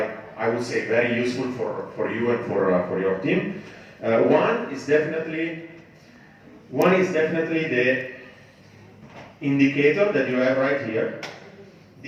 I would say, very useful for you and for your team. One is definitely the indicator that you have right here.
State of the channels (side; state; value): both; identical; correlation 1.00